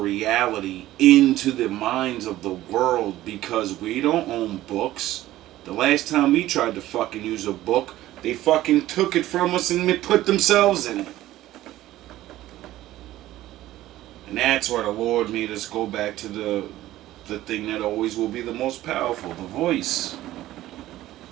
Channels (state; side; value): quieter; left; 15.1 dB